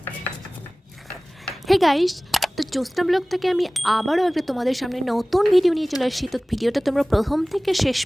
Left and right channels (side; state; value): both; normal; correlation 0.98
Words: হে গাইস, তো জ্যোৎস্না ব্লগ থেকে আমি আবারও একটা তোমাদের সামনে নতুন ভিডিও নিয়ে চলে আসছি। তো ভিডিওটা তোমরা প্রথম থেকে শেষ